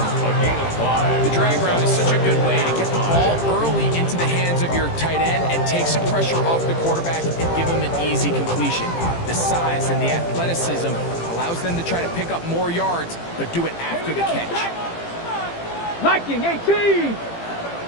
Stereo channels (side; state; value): right; late; 18 ms